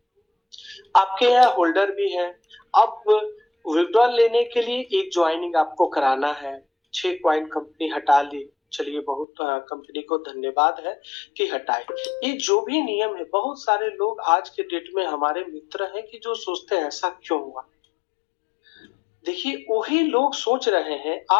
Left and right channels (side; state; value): right; drops out; at 9.2 s